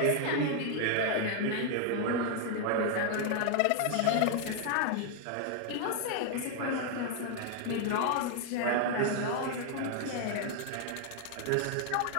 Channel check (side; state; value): both; different; correlation 0.00